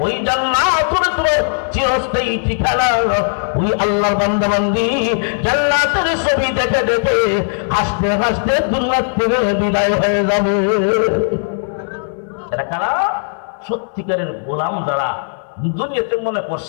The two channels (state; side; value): silent; right; 60 dB below the other